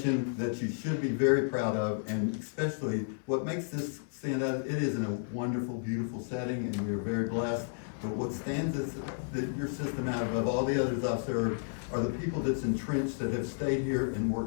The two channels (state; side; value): silent; right; digital silence